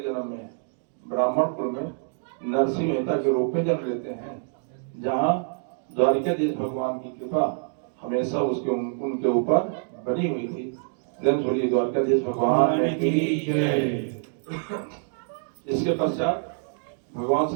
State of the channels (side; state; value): left; silent; digital silence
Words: जन्म में ब्राह्मण कुल में नरसिंह मेहता के रूप में जन्म लेते हैं, जहाँ द्वारिकाधीश भगवान की कृपा हमेशा उनके ऊपर बनी हुई थी। बोलिए द्वारकाधीश भगवान की जय। इसके पश्चात भगवान